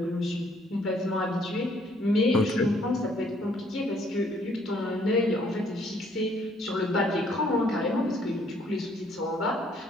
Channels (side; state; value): both; normal; correlation 0.65